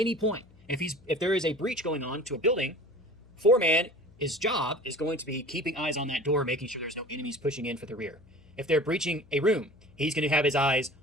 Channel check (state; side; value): noise; left; hum, 26 dB below the sound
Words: point. If there is a breach going on to a building, 4 man, his job is going to be keeping eyes on that door, making sure there's no enemies pushing in for the rear. If they're breaching a room, he's going to have his eyes